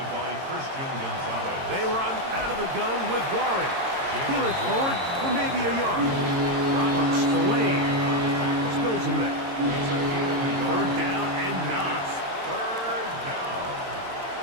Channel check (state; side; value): late; left; 22 ms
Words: by Christian Gonzalez. They run out of the gun with Warren. He'll it forward for maybe a yard. Robert Spillane spills him there. 3rd down and 9. 3rd down.